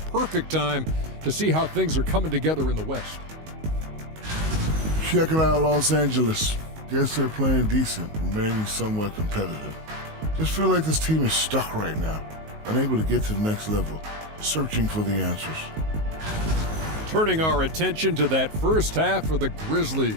time to see how things are coming together in the West. Checking out Los Angeles. Guess they're playing decent, remaining somewhat competitive. Just feel like this team is stuck right now, unable to get to the next level, searching for the answers. Turning our attention to that first half for the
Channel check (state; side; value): late; left; 19 ms